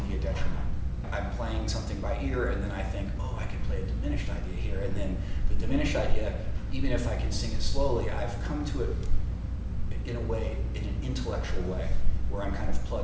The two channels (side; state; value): both; identical; correlation 1.00